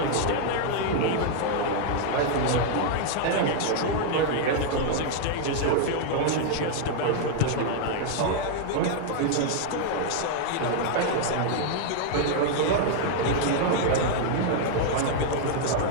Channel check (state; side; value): different; both; correlation -0.01